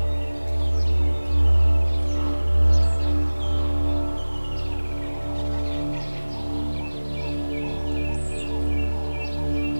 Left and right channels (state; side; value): inverted; both; correlation -1.00